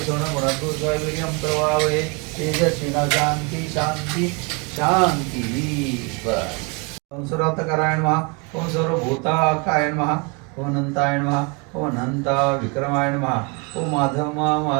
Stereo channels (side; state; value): left; quieter; 30.7 dB